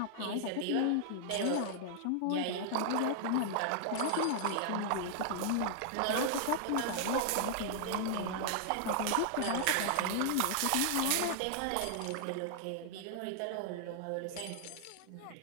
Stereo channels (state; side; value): different; both; correlation -0.01